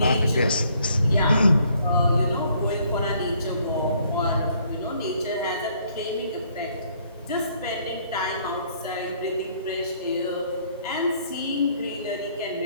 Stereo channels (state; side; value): inverted; both; correlation -0.65